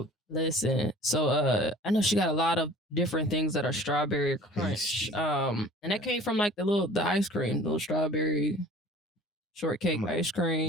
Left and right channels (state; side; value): normal; both; correlation 0.46